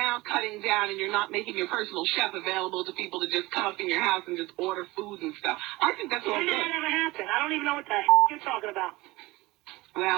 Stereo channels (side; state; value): left; quieter; 20.8 dB